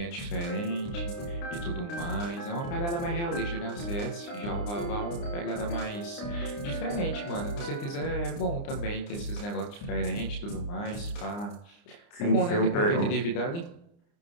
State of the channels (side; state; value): right; late; 29 ms